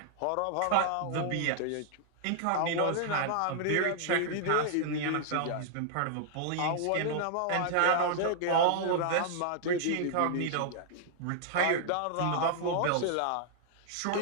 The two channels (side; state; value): both; different; correlation -0.01